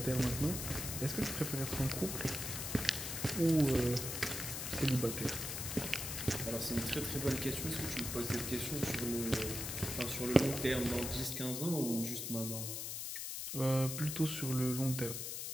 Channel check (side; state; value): left; noise; hiss, 4 dB below the sound